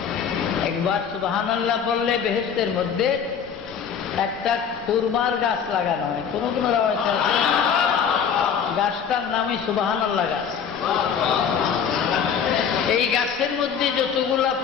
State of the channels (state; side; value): quieter; right; 7.3 dB